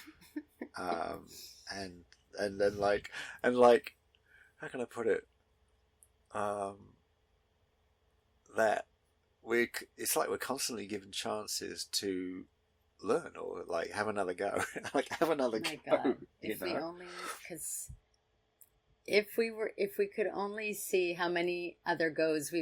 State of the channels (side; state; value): both; identical; correlation 1.00